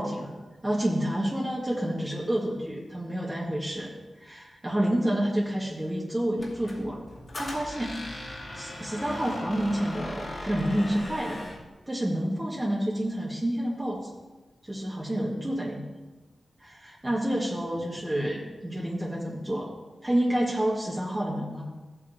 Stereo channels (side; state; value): both; normal; correlation 0.97